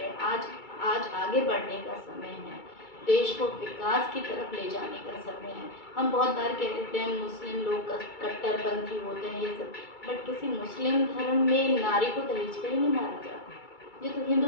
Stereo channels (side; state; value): right; late; 2.3 ms